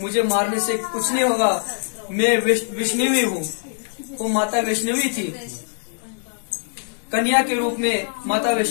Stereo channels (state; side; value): silent; right; 64 dB below the other